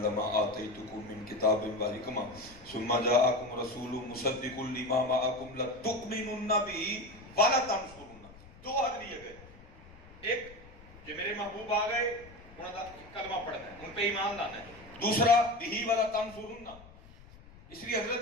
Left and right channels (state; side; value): noise; left; rumble, 21 dB below the sound